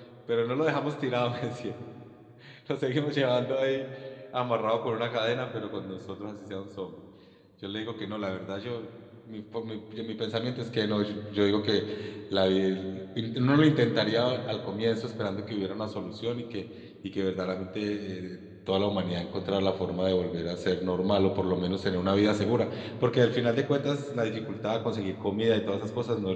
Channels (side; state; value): both; identical; correlation 1.00